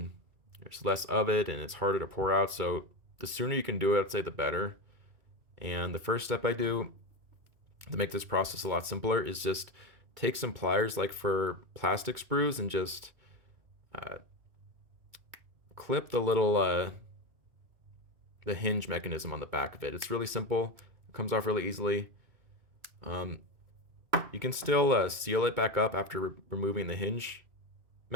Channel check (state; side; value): late; left; 2.2 ms